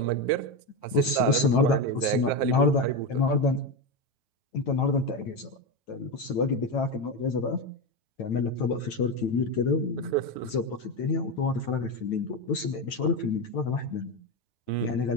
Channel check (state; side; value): late; right; 9.1 ms